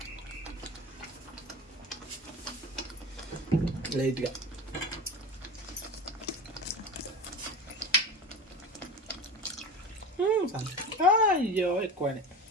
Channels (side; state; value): both; normal; correlation 0.30